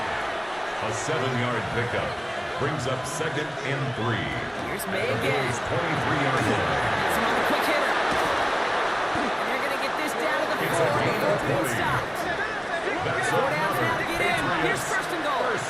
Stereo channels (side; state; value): both; identical; correlation 1.00